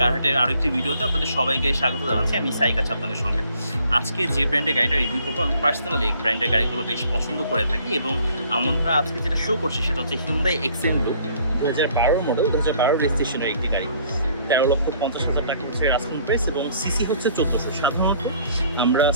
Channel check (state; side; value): inverted; both; correlation -0.59